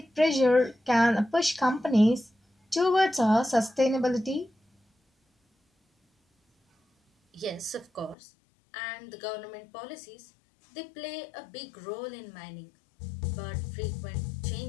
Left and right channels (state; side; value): drops out; right; at 8.2 s